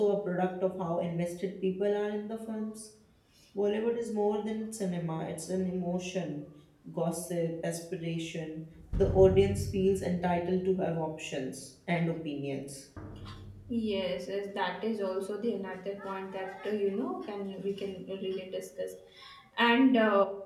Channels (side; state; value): both; identical; correlation 1.00